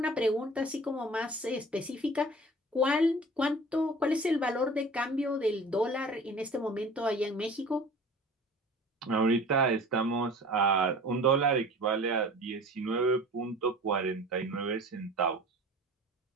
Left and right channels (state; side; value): normal; both; correlation 0.43